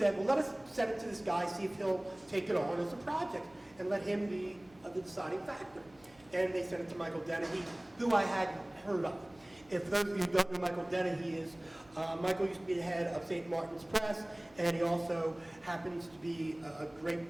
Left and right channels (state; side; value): noise; right; hum, 28 dB below the sound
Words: well, let us send it to this guy, see if he'll take it on as a project, and let him be the deciding factor. And they sent it to Michael Dennehy, who I hadn't heard of. If those of you who don't know Michael Dennehy is, Michael used to be the head of St. Martin's Press, and he also happens to be a